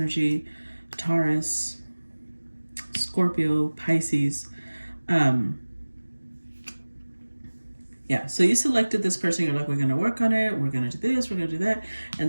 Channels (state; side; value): inverted; both; correlation -1.00